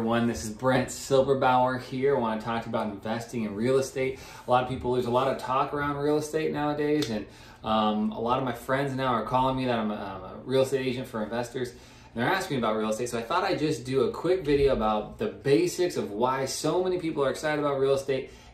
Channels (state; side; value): identical; both; correlation 1.00